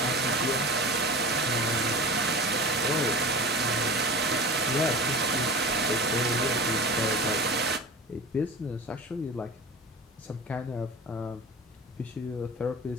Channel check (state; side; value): normal; both; correlation 0.33